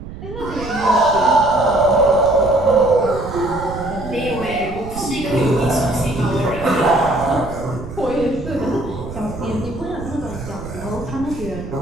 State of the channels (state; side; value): noise; right; rumble, 11 dB below the sound